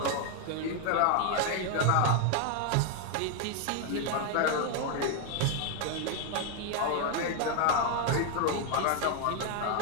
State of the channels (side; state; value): both; different; correlation 0.01